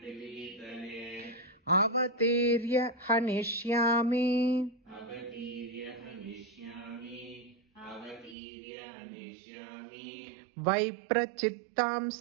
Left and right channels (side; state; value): left; drops out; at 8.3 s